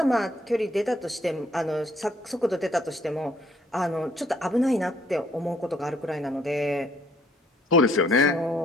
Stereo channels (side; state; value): both; normal; correlation 0.65